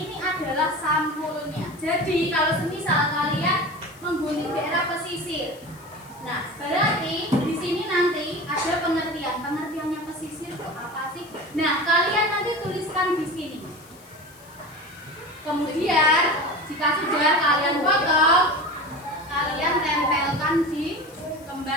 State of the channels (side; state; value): left; noise; hiss, 25 dB below the sound